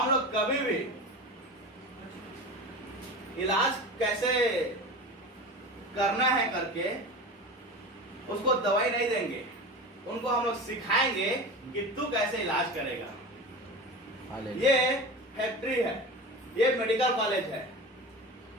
लोग कभी भी इलाज कैसे करना है करके उसको दवाई नहीं देंगे, उनको हम लोग सिखाएंगे कि तू कैसे इलाज करेगा। हालेलुया, ये फैक्ट्री है, ये मेडिकल कॉलेज है,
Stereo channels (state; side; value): normal; both; correlation 0.30